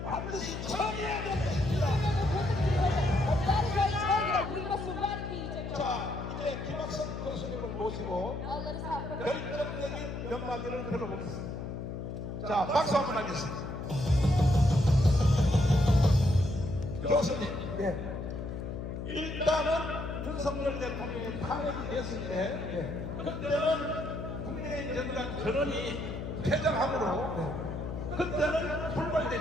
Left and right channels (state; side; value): noise; left; hum, 6 dB below the sound